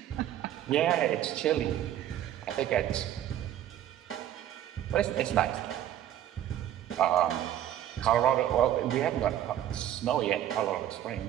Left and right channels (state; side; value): quieter; left; 11.5 dB